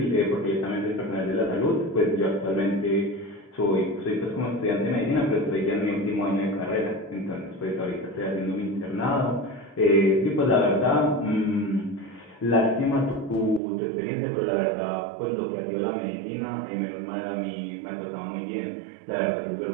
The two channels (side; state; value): left; drops out; at 13.6 s